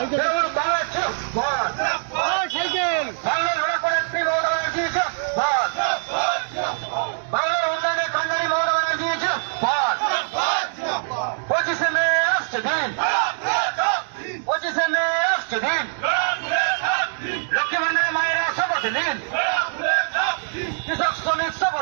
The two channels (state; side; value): silent; left; digital silence